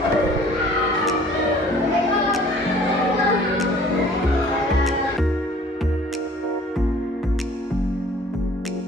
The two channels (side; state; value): both; normal; correlation 0.52